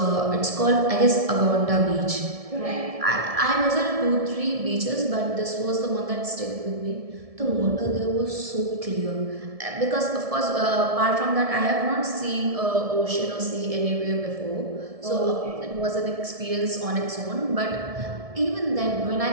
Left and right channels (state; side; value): late; left; 1.7 ms